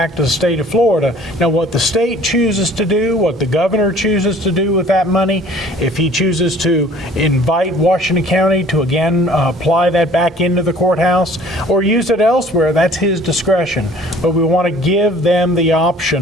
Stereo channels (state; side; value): normal; both; correlation 0.52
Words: to the state of Florida. Now, what the state chooses to do, what the governor chooses to do with that money, if he chooses to invite Washington County to again apply that back into the courthouse or use it elsewhere, that's his discretion. But we want to give them the